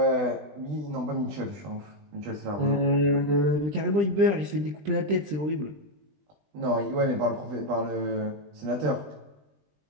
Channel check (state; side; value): late; left; 20 ms